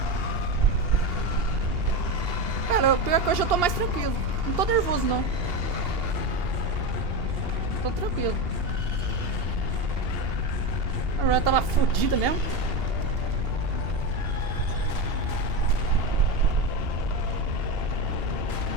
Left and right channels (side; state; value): left; late; 2.8 ms